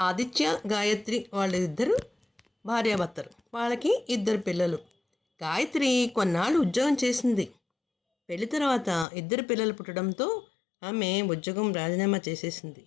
గాయత్రి వాళ్ళిద్దరు భార్యాభర్తలు. వాళ్ళకి 2 పిల్లలు. గాయత్రి కొన్నాళ్ళు ఉద్యోగం చేసింది. పెళ్లి తర్వాత 2 పిల్లలు పుట్టడంతో ఆమె ఉద్యోగం రాజీనామా చేసేసింది.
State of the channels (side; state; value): right; drops out; at 9.1 s